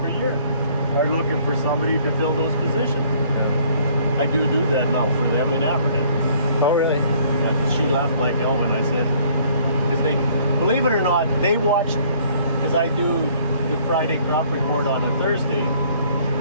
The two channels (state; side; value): inverted; both; correlation -0.60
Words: year, are looking for somebody to fill those positions. I do that now for them in Aberhart. Oh, really? She left like Elvin, I said. Because they, believe it or not, they watched, because I do the Friday crop report on a Thursday,